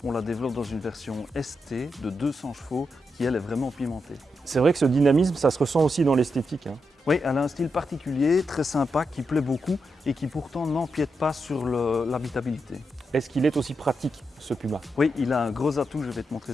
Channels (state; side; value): normal; both; correlation 0.85